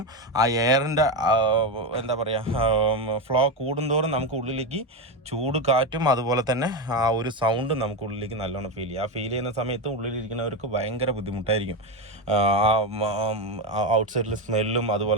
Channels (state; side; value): normal; both; correlation 0.13